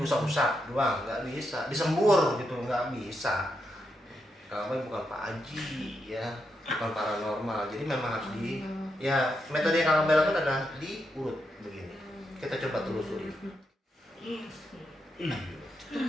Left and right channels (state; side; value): normal; both; correlation 0.83